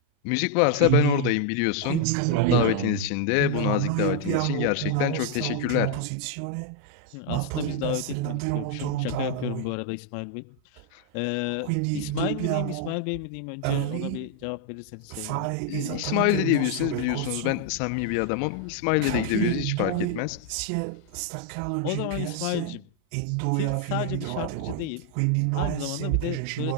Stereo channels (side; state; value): both; different; correlation 0.00